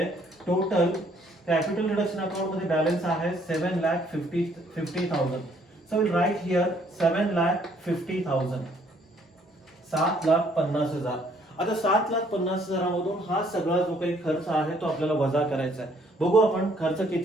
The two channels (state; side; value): normal; both; correlation 0.64